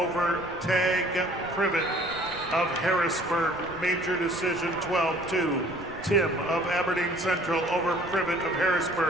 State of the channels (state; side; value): noise; right; rumble, 19 dB below the sound